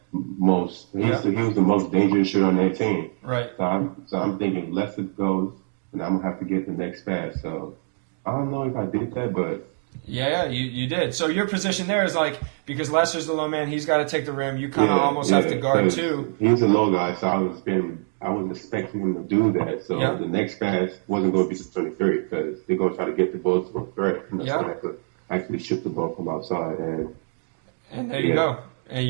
He was the most dangerous shooter on that team. Right. So I'm thinking if Lester goes, and I'm gonna have to get the next pass. So I don't know if I did that, but. Yeah, you did. So your position there is like, because Lester's the low man, he's got to take the rim. You kind of almost have to guard too. He's a low guy, so I was expecting him to do that. So the next pass wasn't going to be to 23 because they're going to try to get the ball to a threat. So I could actually shoot the ball from outside. And there you go. And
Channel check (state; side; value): silent; left; 58 dB below the other